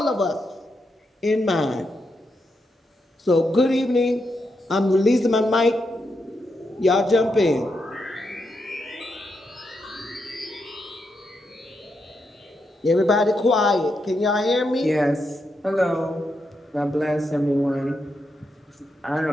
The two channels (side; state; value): both; normal; correlation 0.83